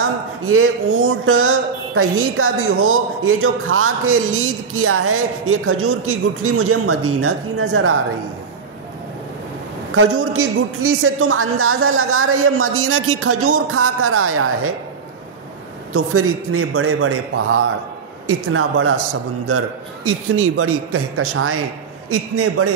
یہ اونٹ کہیں کا بھی ہو، یہ جو کھا کے لید کیا ہے یہ کھجور کی گٹھلی مجھے مدینہ کی نظر آ رہی ہے۔ کھجور کی گٹھلی سے تم اندازہ لگا رہے یہ مدینہ کی کھجور کھا کر آیا ہے۔ تو پھر اتنے بڑے بڑے پہاڑ، اتنا بڑا سمندر، اتنی بڑی کہکشائیں، اتنے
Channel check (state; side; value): quieter; left; 5.6 dB